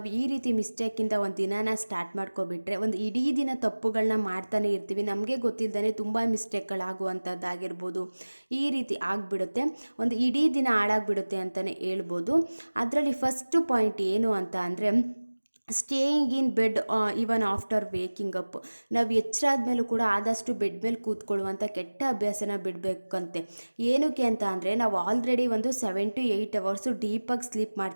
ಈ ರೀತಿ ಮಿಸ್ಟೇಕಿಂದ ಒಂದು ದಿನಾನ ಸ್ಟಾರ್ಟ್ ಮಾಡ್ಕೊಬಿಟ್ರೆ ಒಂದು ಇಡೀ ದಿನ ತಪ್ಪುಗಳನ್ನ ಮಾಡ್ತಾನೆ ಇರ್ತೀವಿ. ನಮಗೆ ಗೊತ್ತಿಲ್ಲದೇ ತುಂಬ ಮಿಸ್ಟೇಕ್ಗಳಾಗುವಂಥದ್ದಾಗಿರ್ಬೋದು, ಈ ರೀತಿ ಆಗಿಬಿಡುತ್ತೆ. ಒಂದು ಇಡೀ ದಿನ ಹಾಳಾಗಿಬಿಡುತ್ತೆ ಅಂತಲೇ ಹೇಳ್ಬೋದು. ಅದರಲ್ಲಿ ಫಸ್ಟು ಪಾಯಿಂಟ್ ಏನು ಅಂತ ಅಂದರೆ, staying in bed even after waking up. ನಾವು ಎಚ್ಚರ ಆದಮೇಲೂ ಕೂಡ ಆದಷ್ಟು ಬೆಡ್ ಮೇಲೆ ಕೂತ್ಕೊಳ್ಳುವಂಥ ಕೆಟ್ಟ ಅಭ್ಯಾಸನ ಬಿಡಬೇಕಂತೆ. ಏನಕ್ಕೆ ಅಂತ ಅಂದರೆ, ನಾವು ಆಲ್ರೆಡಿ ಒಂದು 7 to 8 ಅವರ್ಸು ಡೀಪಾಗಿ ಸ್ಲೀಪ್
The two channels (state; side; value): inverted; both; correlation -1.00